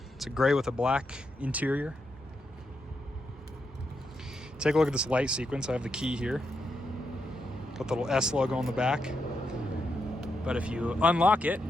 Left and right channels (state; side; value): normal; both; correlation 0.83